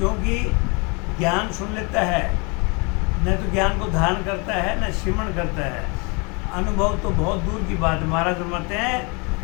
ज्ञान सुन लेता है न तो ज्ञान को धारण करता है न श्रवण करता है। अनुभव तो बहुत दूर की बात है। महाराज फरमाते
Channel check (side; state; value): right; quieter; 31.0 dB